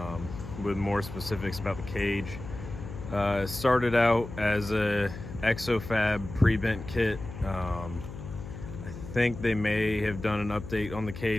with more specifics about the cage. It started out as a XO-Fab pre-bent kit. I think they may have done an update on the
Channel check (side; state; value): left; noise; hum, 11 dB below the sound